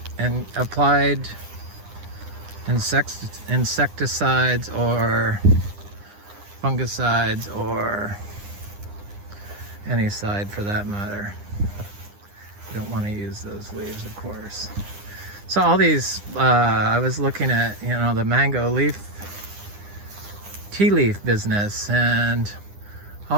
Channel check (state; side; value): late; left; 9.9 ms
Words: and applied insecticides or fungicides or any side for that matter. You don't want to use those leaves, of course. So all these, I was looking at, the mango leaf, tea leaf business, and